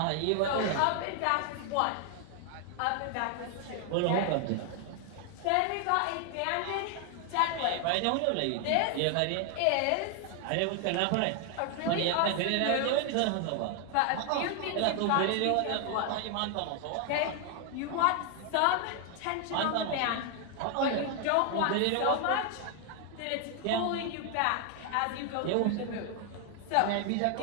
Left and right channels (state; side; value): different; both; correlation 0.00